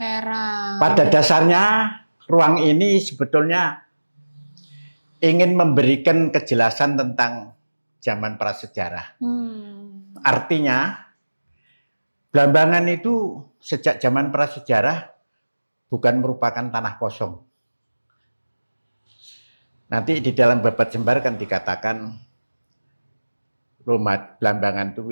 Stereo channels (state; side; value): inverted; both; correlation -1.00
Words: Pada dasarnya ruang ini sebetulnya ingin memberikan kejelasan tentang zaman prasejarah. Artinya Blambangan itu sejak zaman prasejarah bukan merupakan tanah kosong. Nanti di dalam Babat Jembar kan dikatakan Blambangan itu